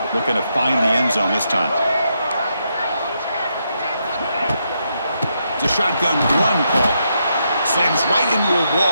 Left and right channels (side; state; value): both; inverted; correlation -0.80